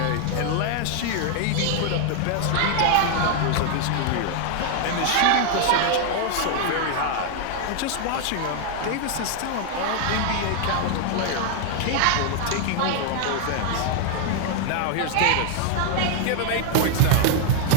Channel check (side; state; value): both; different; correlation 0.00